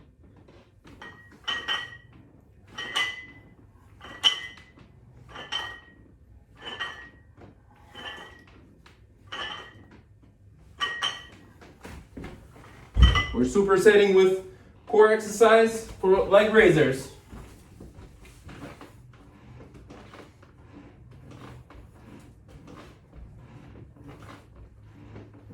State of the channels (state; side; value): identical; both; correlation 1.00